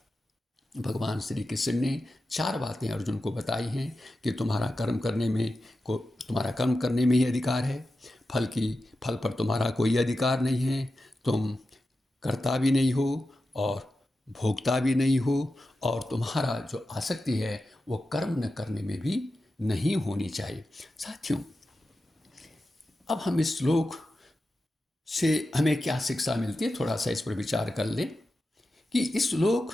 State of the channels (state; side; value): normal; both; correlation 0.92